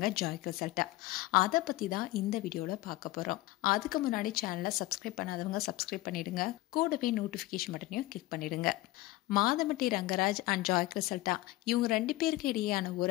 ஜாய் கிறிசல்டா. அதை பத்தி தான் இந்த வீடியோல பார்க்க போறோம். அதுக்கு முன்னாடி சேனலை சப்ஸ்கிரைப் பண்ணாதவங்க சப்ஸ்கிரைப் பண்ணிடுங்க, கூடவே நோட்டிபிகேஷன் பட்டனையும் கிளிக் பண்ணிடுங்க. மாதம்பட்டி ரங்கராஜ் அண்ட் ஜாய் கிறிசல்டா இவங்க ரெண்டு பேருக்கு இடையேயான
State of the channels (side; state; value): right; quieter; 18.2 dB